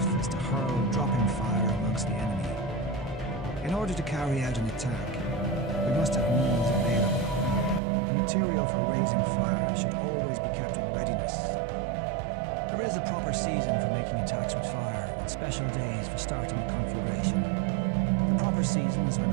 is to hurl dropping fire amongst the enemy. In order to carry out an attack, we must have means available. The material for raising fire should always be kept in readiness. There is a proper season for making attacks with fire, and special days for starting a conflagration. The proper season is when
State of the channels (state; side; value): drops out; left; at 7.8 s